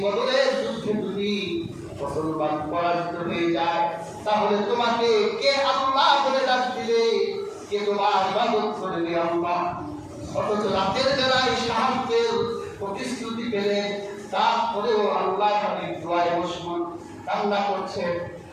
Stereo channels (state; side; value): identical; both; correlation 1.00